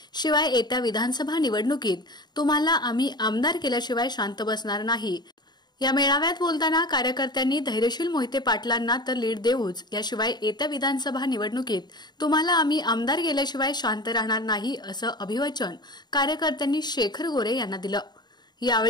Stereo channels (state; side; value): late; right; 0.21 ms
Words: शिवाय येत्या विधानसभा निवडणुकीत तुम्हाला आम्ही आमदार केल्याशिवाय शांत बसणार नाही. या मेळाव्यात बोलताना कार्यकर्त्यांनी धैर्यशील मोहिते पाटलांना तर लीड देऊच, याशिवाय येत्या विधानसभा निवडणुकीत तुम्हाला आम्ही आमदार केल्याशिवाय शांत राहणार नाही असं अभिवचन कार्यकर्त्यांनी शेखर गोरे यांना दिलं.